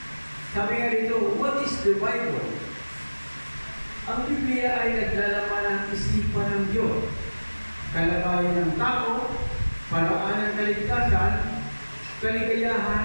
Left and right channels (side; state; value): both; inverted; correlation -1.00